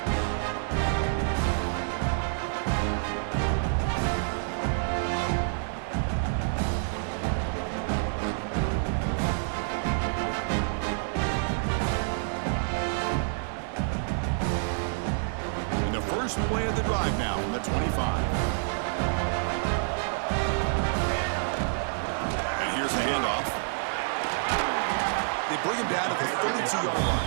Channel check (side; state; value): left; silent; digital silence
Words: First play of the drive now from the 25. And here's the handoff. They bring him down to the 32-yard